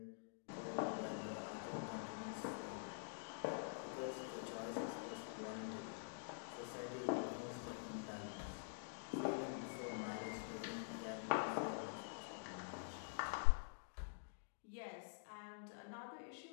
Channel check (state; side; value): silent; right; digital silence